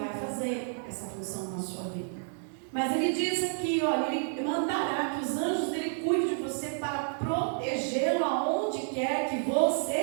fazer essa função na sua vida. Mas ele diz aqui, olha, ele mandará que os anjos dele cuidem de você para protegê-lo aonde quer que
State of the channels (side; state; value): left; silent; 58 dB below the other